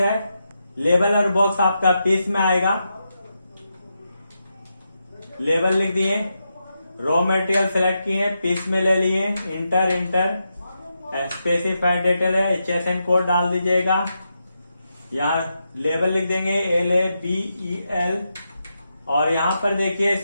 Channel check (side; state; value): both; inverted; correlation -0.86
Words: लेबल और बॉक्स आपका पीस में आएगा। लेबल लिख दिए, रॉ मटेरियल सेलेक्ट किए, पीस में ले लिए, इंटर। स्पेसिफाइड डिटेल है, HSN कोड डाल दीजिएगा। यहाँ लेबल लिख देंगे LABEL और यहाँ पर देखिए